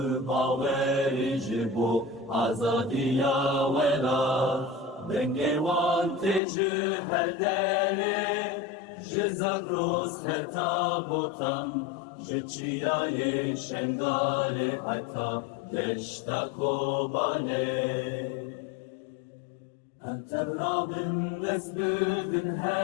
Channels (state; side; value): drops out; right; at 6.4 s